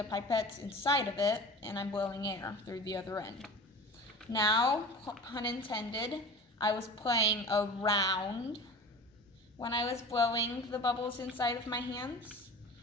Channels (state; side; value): normal; both; correlation 0.37